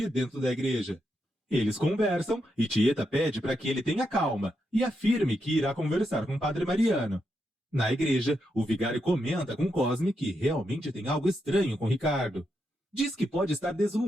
dentro da igreja. Eles conversam e Tieta pede para que ele tenha calma e afirme que irá conversar com o Padre Mariano. Na igreja, o vigário comenta com Cosme que realmente tem algo estranho com Ricardo. Diz que pode estar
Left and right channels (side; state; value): both; normal; correlation 0.83